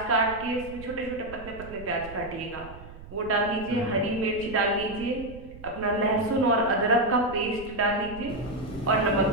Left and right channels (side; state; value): right; noise; rumble, 16 dB below the sound